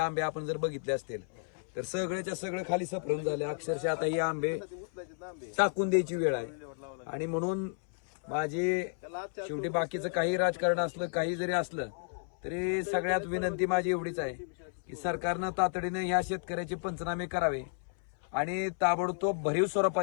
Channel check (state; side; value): silent; right; 56 dB below the other